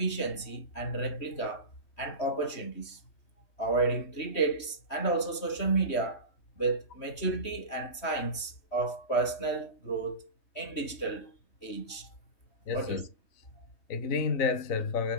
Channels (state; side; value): late; right; 3.1 ms